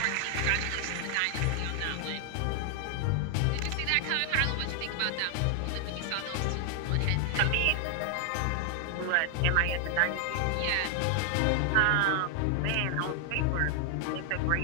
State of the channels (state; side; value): different; both; correlation 0.00